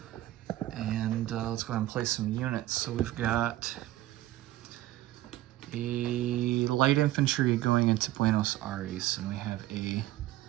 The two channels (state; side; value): quieter; left; 15.4 dB